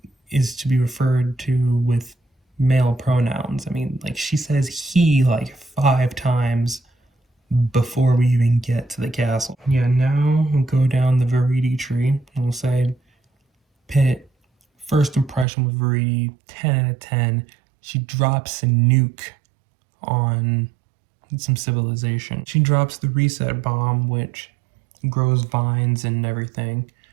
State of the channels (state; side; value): drops out; left; at 15.5 s